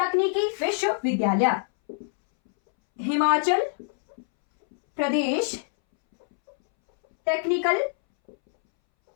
विश्वविद्यालय। हिमाचल प्रदेश टेक्निकल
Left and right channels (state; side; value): silent; right; 62 dB below the other